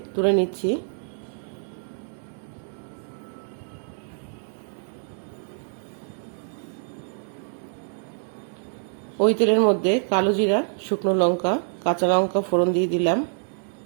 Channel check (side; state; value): left; silent; digital silence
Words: তুলে নিচ্ছি। ওই তেলের মধ্যে কালো জিরা, শুকনো লঙ্কা, কাঁচা লঙ্কা ফোড়ন দিয়ে দিলাম।